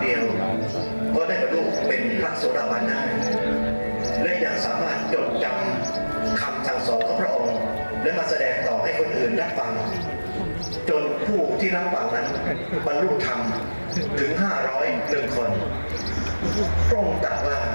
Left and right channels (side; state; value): both; inverted; correlation -1.00